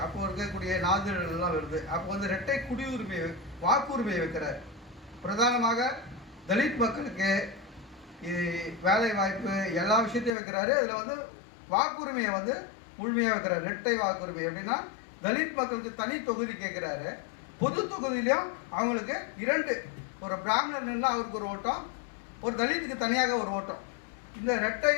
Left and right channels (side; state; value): right; drops out; at 10.3 s